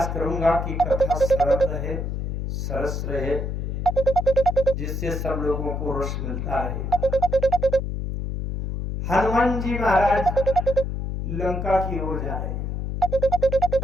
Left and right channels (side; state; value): left; noise; hum, 3 dB below the sound